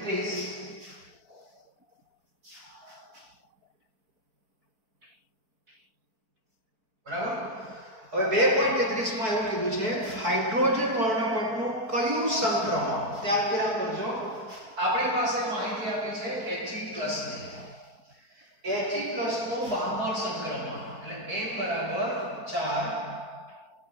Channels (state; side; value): late; left; 4.5 ms